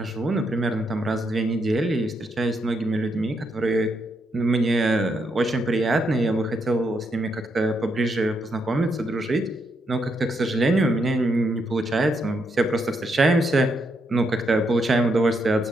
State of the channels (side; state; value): both; normal; correlation 0.79